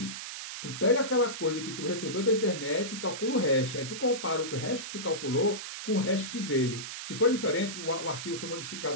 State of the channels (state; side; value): noise; right; hiss, 8 dB below the sound